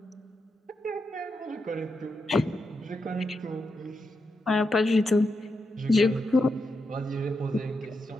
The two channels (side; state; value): both; normal; correlation 0.85